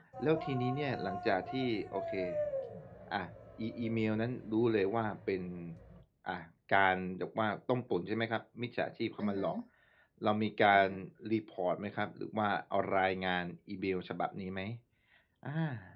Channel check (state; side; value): identical; both; correlation 1.00